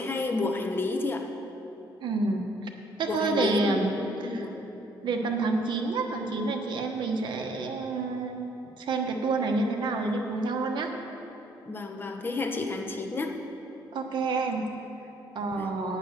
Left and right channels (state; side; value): normal; both; correlation 0.63